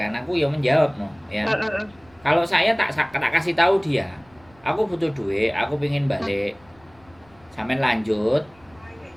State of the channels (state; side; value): noise; left; rumble, 30 dB below the sound